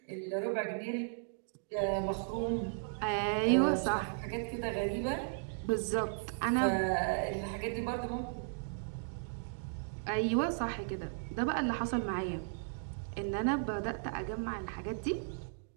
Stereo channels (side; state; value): left; silent; digital silence